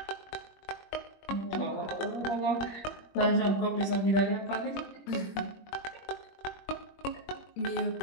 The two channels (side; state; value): right; late; 21 ms